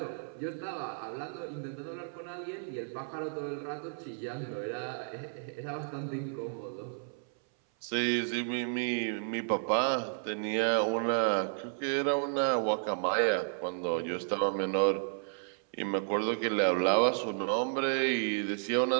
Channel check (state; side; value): silent; left; 56 dB below the other